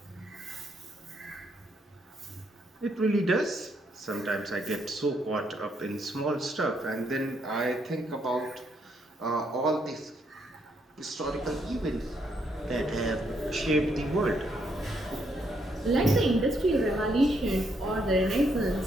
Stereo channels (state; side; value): normal; both; correlation 0.74